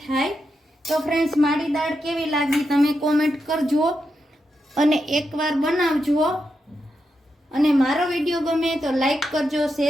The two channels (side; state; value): both; normal; correlation 0.85